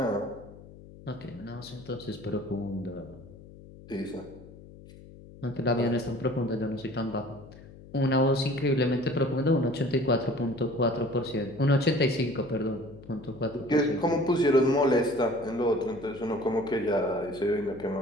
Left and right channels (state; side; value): noise; left; hum, 19 dB below the sound